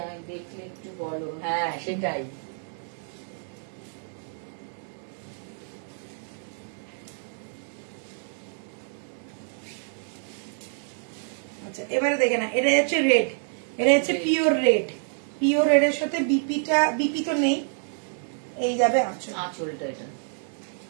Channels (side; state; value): left; silent; 60 dB below the other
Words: দেখলে একটু বলো। হ্যাঁ সেটাই। আচ্ছা এবারে দেখে না, এটা হচ্ছে রেড, এটা হচ্ছে পিওর রেড। পিওর রেড এর সাথে বিপি তো নেই, এই যাবে আঁচল। আঁচলটা